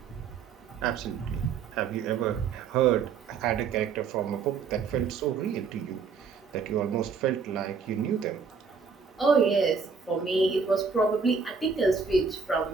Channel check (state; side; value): quieter; left; 5.5 dB